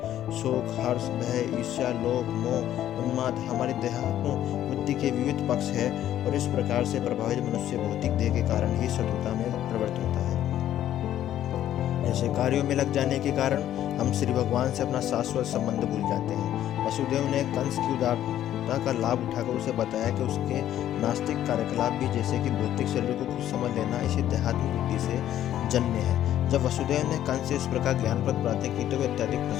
शोक, हर्ष, भय, ईर्ष्या, लोभ, मोह, उन्माद हमारी देहात्म बुद्धि के विविध पक्ष है और इस प्रकार से प्रभावित मनुष्य भौतिक देह के कारण ही शत्रुता में प्रवृत्त होता है। ऐसे कार्यों में लग जाने के कारण हम श्री भगवान से अपना शाश्वत संबंध भूल जाते हैं। वसुदेव ने कंस की उदारता का लाभ उठाकर उसे बताया कि उसके नास्तिक कार्यकलाप भी, जैसे कि भौतिक शरीर को खुद समझ लेना, इसी देहात्म बुद्धि से जन्य है। जब वसुदेव ने कंस से इस प्रकार ज्ञानप्रद बातें की तो वे अत्यधिक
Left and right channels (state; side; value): quieter; right; 11.8 dB